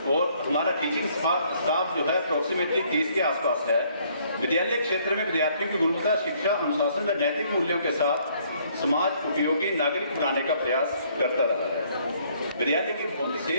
और हमारा टीचिंग स्टाफ जो है अप्रोक्सीमेटली 30 के आसपास है। विद्यालय क्षेत्र में विद्यार्थियों की गुणवत्ता शिक्षा, अनुशासन व नैतिक मूल्यों के साथ समाज उपयोगी नागरिक बनाने का प्रयास करता रहा है। विद्यालय की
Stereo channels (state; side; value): inverted; both; correlation -0.65